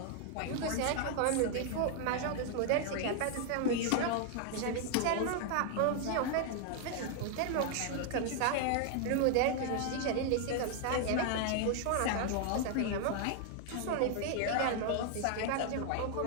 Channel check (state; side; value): different; both; correlation 0.00